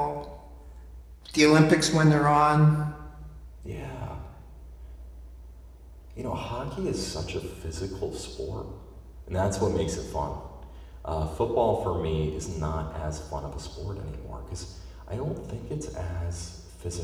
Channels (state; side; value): identical; both; correlation 1.00